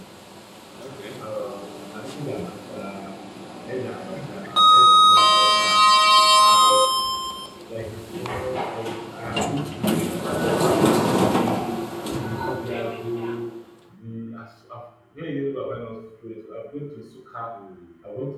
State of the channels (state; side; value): identical; both; correlation 1.00